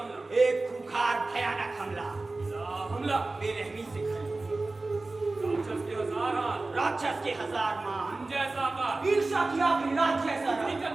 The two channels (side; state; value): left; quieter; 3.3 dB